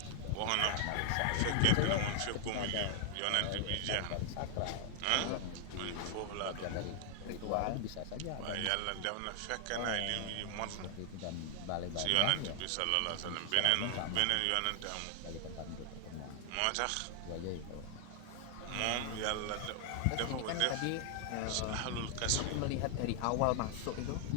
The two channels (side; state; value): both; different; correlation 0.00